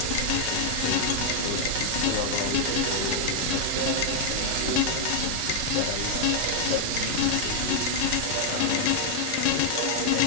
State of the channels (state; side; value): different; both; correlation 0.00